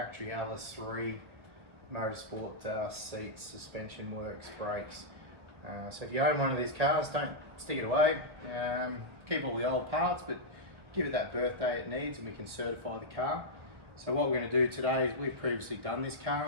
LS3 Motorsport seats, suspension works, brakes. So if you own one of these cars, don't stick it away. Keep all the old parts, but give it that birthday it needs and we can certify the car. So what we're going to do today is we've previously done this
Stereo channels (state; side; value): late; left; 1.1 ms